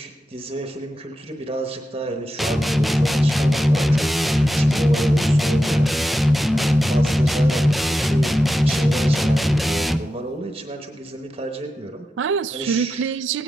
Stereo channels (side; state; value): both; normal; correlation 0.90